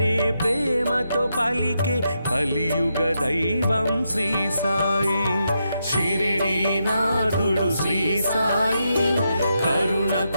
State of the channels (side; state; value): both; inverted; correlation -0.83